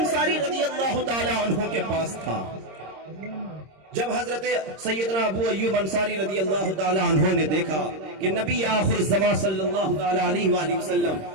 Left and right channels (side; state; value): left; late; 26 ms